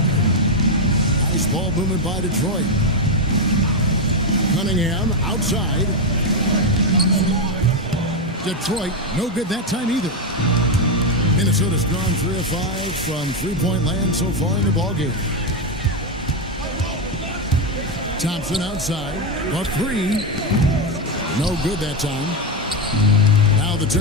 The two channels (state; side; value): normal; both; correlation 0.06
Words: Nice ball movement by Detroit. Cunningham outside. Detroit, no good that time either. Minnesota's gone 3 of 5 from three-point land so far in the ballgame. Thompson outside. A 3. No good that time. Now the